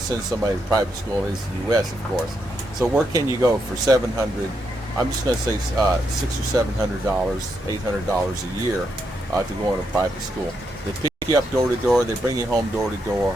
somebody to private school as the U.S., of course. So where can you go for $700? I'm just going to say $600 or $700, $800 a year to go in a private school. They pick you up door to door. They bring you home door to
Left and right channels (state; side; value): normal; both; correlation 0.81